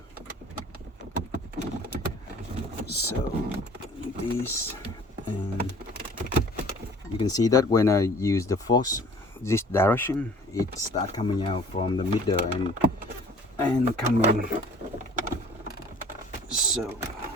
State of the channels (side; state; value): both; normal; correlation 0.50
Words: So this, and you can see that when I use the force this direction, it starts coming out from the middle and coming. So